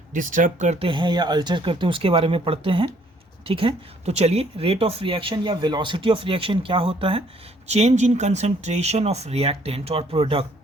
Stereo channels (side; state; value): both; normal; correlation 0.63